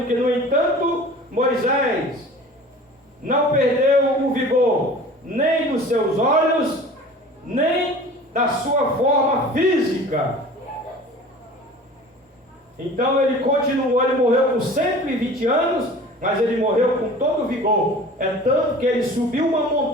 que, no entanto, Moisés não perdeu o vigor, nem dos seus olhos, nem da sua forma física. Então ele continuou, ele morreu com 120 anos, mas ele morreu com todo o vigor. É tanto que ele subiu uma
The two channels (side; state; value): both; normal; correlation 0.42